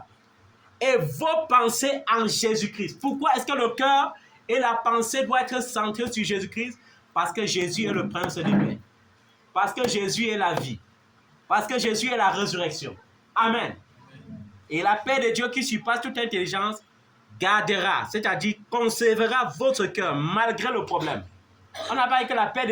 et vos pensées en Jésus-Christ. Pourquoi est-ce que le cœur et la pensée doivent être centrés sur Jésus-Christ? Parce que Jésus est le prince de paix. Parce que Jésus est la vie. Parce que Jésus est la résurrection. Amen. Et la paix de Dieu qui surpasse toute intelligence gardera, c'est-à-dire conservera votre cœur malgré le problème. On n'a pas dit que la paix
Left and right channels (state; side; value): identical; both; correlation 1.00